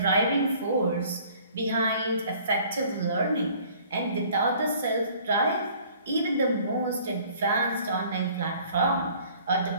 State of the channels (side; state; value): both; inverted; correlation -0.54